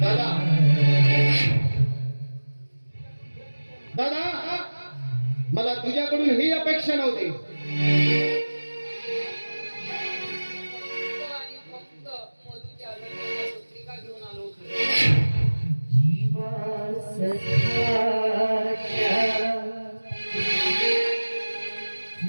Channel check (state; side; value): inverted; both; correlation -1.00